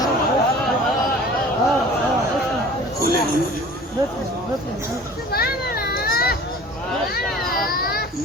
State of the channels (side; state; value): both; normal; correlation 0.44